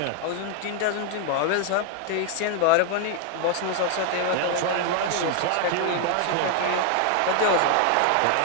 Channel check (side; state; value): both; different; correlation 0.00